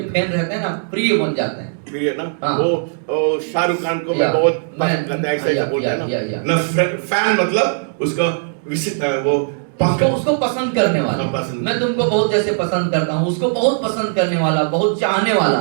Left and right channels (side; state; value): left; silent; digital silence